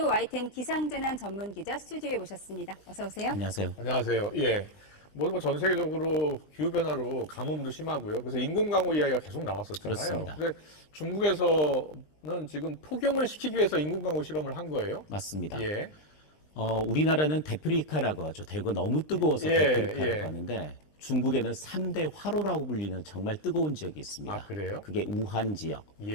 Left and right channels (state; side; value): late; right; 20 ms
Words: YTN 기상재난 전문 기자 스튜디오에 모셨습니다. 어서 오세요. 안녕하세요. 안녕하세요. 예. 전 세계적으로 기후변화로 가뭄도 심하고요. 그래서 인공강우 이야기가 계속 나왔었잖아요. 그렇습니다. 근데 중국에서는 지금 폭염을 시키기 위해서 인공강우 실험을 한 거예요. 맞습니다. 예. 우리나라는 데프리카라고 하죠. 대구가 너무 뜨거워서 예, 데프리카라고 예. 하는데 중국에는 3대 화로라고 불리는 정말 뜨거운 지역이 있습니다. 아, 그래요? 그게 우한 지역,